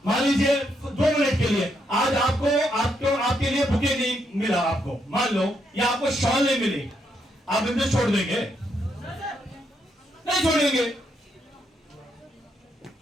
मान लीजिए 2 मिनट के लिए आज आपके लिए बुके नहीं मिला आपको, मान लो, या आपको शॉल नहीं मिली, आप बिजनेस छोड़ देंगे? नहीं छोड़ेंगे।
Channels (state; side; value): normal; both; correlation 0.78